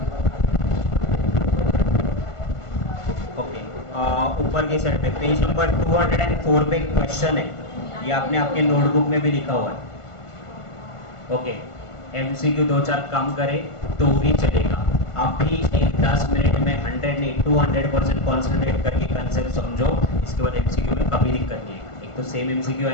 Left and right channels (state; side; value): late; right; 1.5 ms